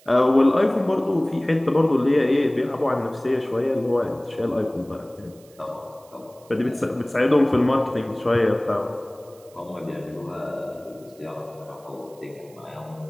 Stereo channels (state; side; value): noise; right; hiss, 28 dB below the sound